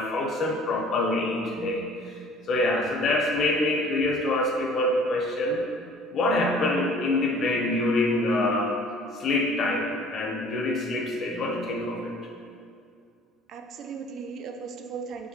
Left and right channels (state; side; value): normal; both; correlation 0.51